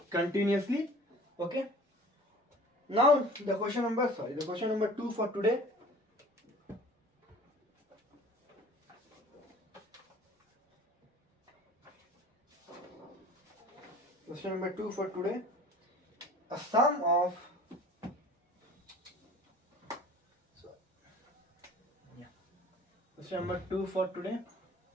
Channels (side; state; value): both; normal; correlation 0.45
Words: continuously. Okay. Now the question number 2 for today. Question number 2 for today. A sum of Question number 2 for today.